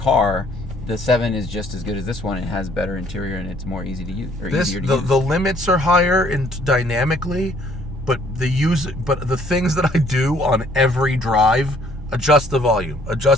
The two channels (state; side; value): normal; both; correlation 0.62